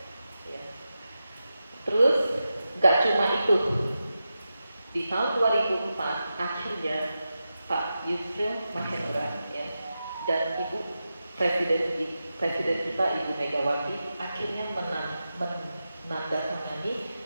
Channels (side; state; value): both; inverted; correlation -0.91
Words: Ya. Terus, nggak cuma itu. Di tahun 2004 akhirnya Pak Yusril Mahendra ya, dan Ibu Presiden kita Ibu Megawati akhirnya menandatangani